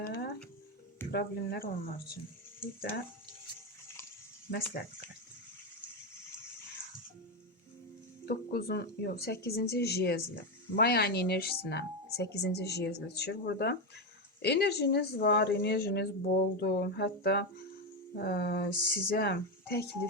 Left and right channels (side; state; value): both; normal; correlation 0.10